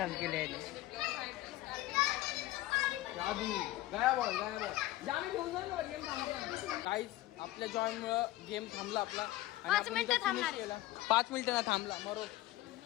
केले. काहीच आपल्या जॉयमुळं गेम थांबला आपला आणि 5 आपण मिनिटं इथं थांबणार. finish केला. 5 मिनिटं ना थांबला मरो.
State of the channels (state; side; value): quieter; right; 16.6 dB